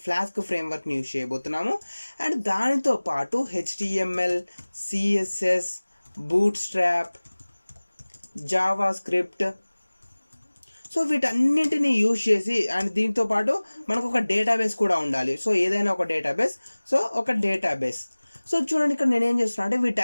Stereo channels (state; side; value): inverted; both; correlation -1.00